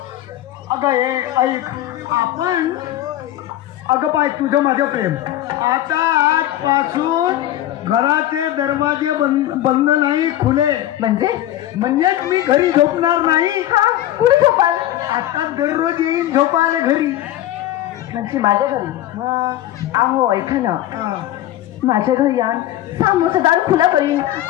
अगं हे ऐक, आपण अगं पाय तुझं माझं प्रेम आता आजपासून घराचे दरवाजे बंद नाही, खुले. म्हणजेच मी घरी झोपणार नाही. कुठे झोपाल? आता दररोज येईन झोपायला घरी. म्हणजे माझ्या घरी? अहो ऐका ना, माझ्या घरी यान सामोसा दार खुला करीन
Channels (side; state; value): right; quieter; 13.5 dB